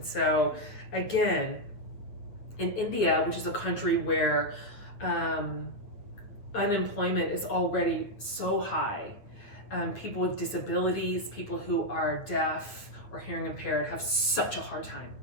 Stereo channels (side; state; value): right; late; 9.1 ms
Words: so, again, in India, which is a country where unemployment is already so high, people with disabilities, people who are deaf or hearing impaired have such a hard time